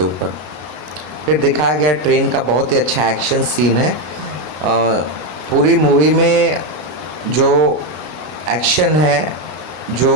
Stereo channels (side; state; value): left; late; 33 ms